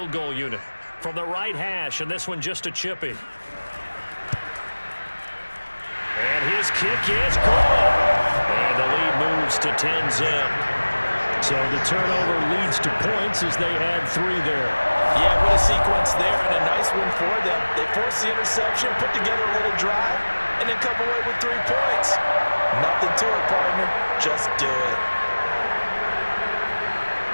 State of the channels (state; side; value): inverted; both; correlation -1.00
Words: goal unit from the right hash, and this one just a chippy. And his kick is good. And the lead moves to 10-zip. So the turnover leads to points as they add 3 there. Yeah, what a sequence there, and a nice one for them. They force the interception, put together a little drive, and then come away with 3 points. Nothing to it, partner. Just do it.